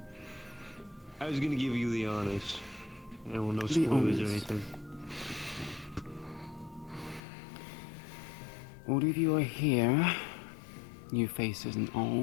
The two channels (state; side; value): drops out; right; at 7.2 s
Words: I was gonna give you the honest. Well, no The spoilers or honest. anything. All of you are here, new faces and